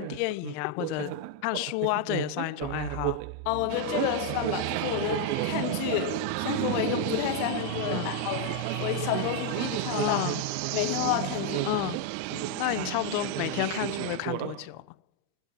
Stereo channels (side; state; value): both; different; correlation 0.00